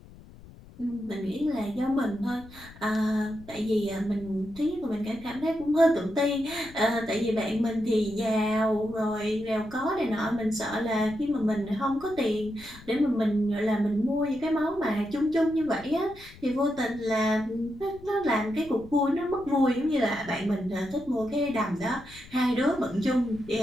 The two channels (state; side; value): noise; left; rumble, 20 dB below the sound